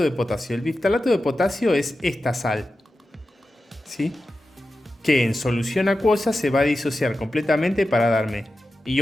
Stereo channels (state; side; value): normal; both; correlation 0.92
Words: de potasio. El biftalato de potasio es esta sal, ¿sí? Que en solución acuosa se va a disociar completamente para darme